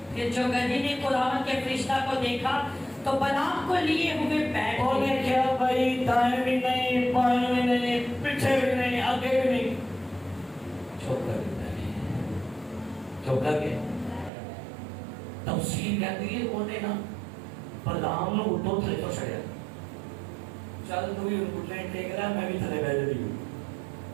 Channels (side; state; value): left; drops out; at 14.3 s